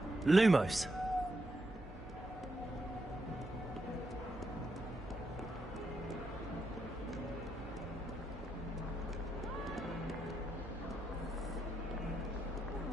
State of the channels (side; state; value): both; normal; correlation 0.82